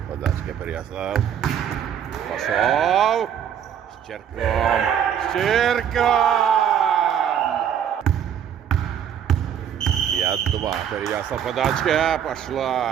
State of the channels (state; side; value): quieter; left; 9.0 dB